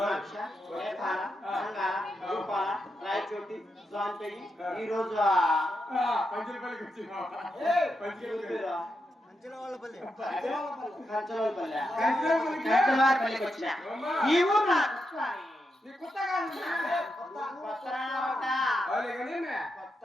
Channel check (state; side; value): normal; both; correlation 0.85